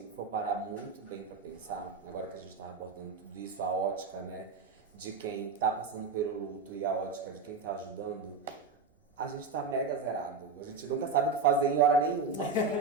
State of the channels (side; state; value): left; quieter; 4.6 dB